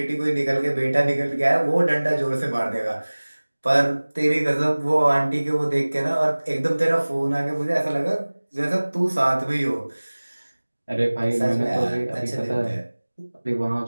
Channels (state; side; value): inverted; both; correlation -1.00